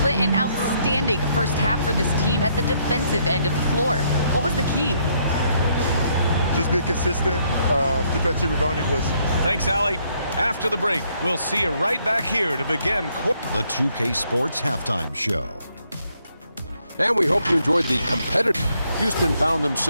Clint, an outstanding first half for this team at the defensive end of the floor. What was the key? Just be consistent. Defensive rebounding was. Thanks, Allie. After the break, we'll see you right back here to begin the 2K Sports Halftime Show. And we hope you enjoyed the competitive. Houston found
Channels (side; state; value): both; inverted; correlation -0.71